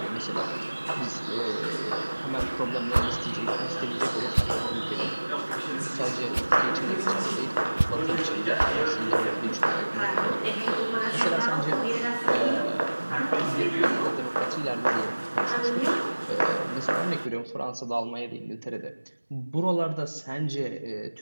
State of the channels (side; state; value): both; inverted; correlation -1.00